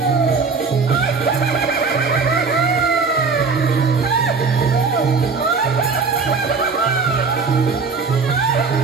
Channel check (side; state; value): left; quieter; 4.7 dB